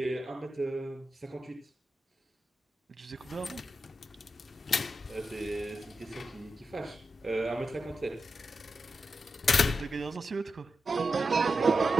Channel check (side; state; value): both; normal; correlation 0.89